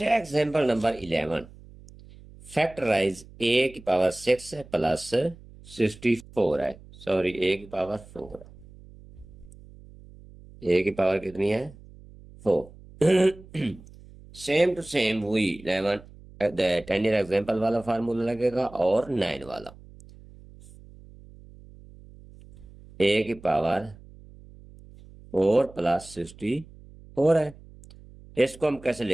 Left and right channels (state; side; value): noise; right; hum, 21 dB below the sound